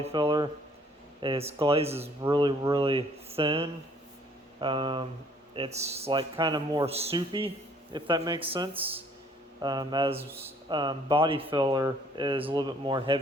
filler is glaze is really, really thin. It's like kind of more soupy, if that makes sense. As body filler is a little bit more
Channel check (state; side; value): normal; both; correlation 0.60